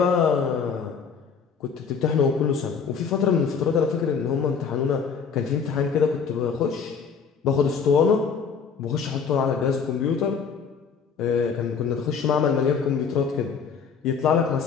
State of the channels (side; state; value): right; quieter; 6.2 dB